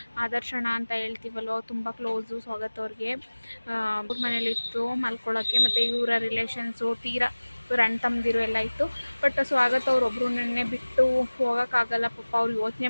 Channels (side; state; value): both; inverted; correlation -1.00